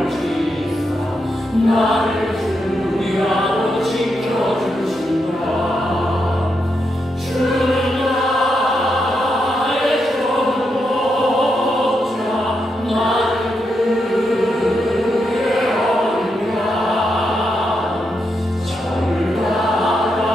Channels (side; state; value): both; normal; correlation 0.83